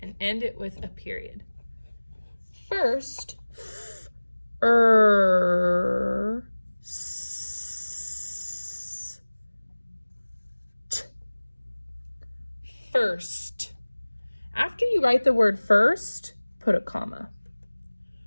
and end it with a period. First, first. After you write the word first, put a comma.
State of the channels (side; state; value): both; inverted; correlation -1.00